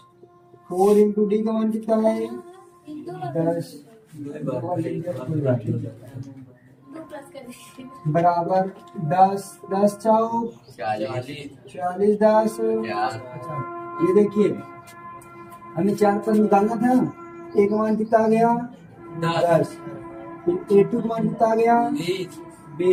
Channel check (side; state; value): both; identical; correlation 1.00